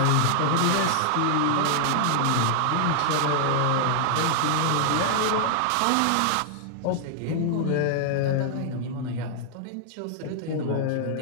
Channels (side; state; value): both; different; correlation 0.00